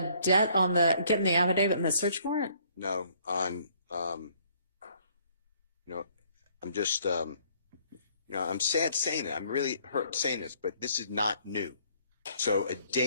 debt, on the getting the affidavit and the search warrant? No, on, I'm just, I'm sad saying it. I'm really hurt saying this, but this is not new. So a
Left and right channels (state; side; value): inverted; both; correlation -0.63